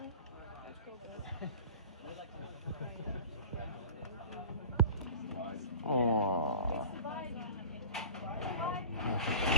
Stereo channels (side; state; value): both; inverted; correlation -0.39